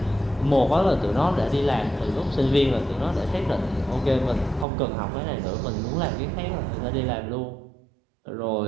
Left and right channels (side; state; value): left; drops out; at 4.7 s